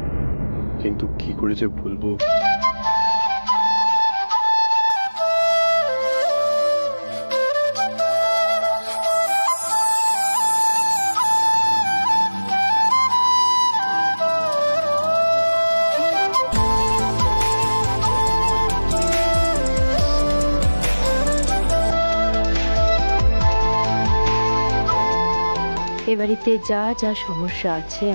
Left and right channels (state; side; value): inverted; both; correlation -1.00